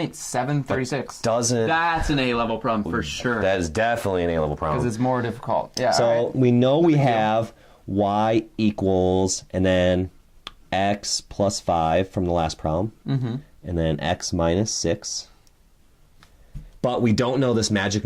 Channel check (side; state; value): both; identical; correlation 1.00